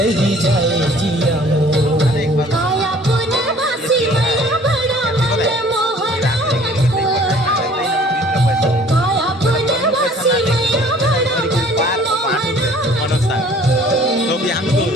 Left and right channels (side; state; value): both; normal; correlation 0.53